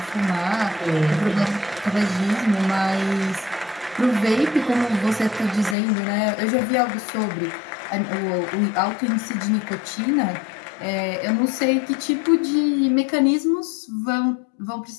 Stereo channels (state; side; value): drops out; right; at 5.8 s